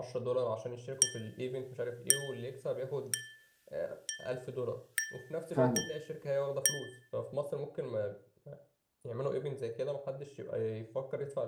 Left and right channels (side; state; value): both; identical; correlation 1.00